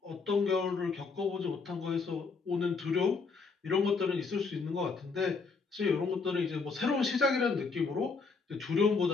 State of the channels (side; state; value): right; quieter; 4.7 dB